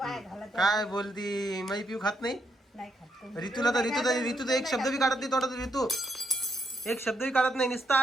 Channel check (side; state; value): both; normal; correlation 0.77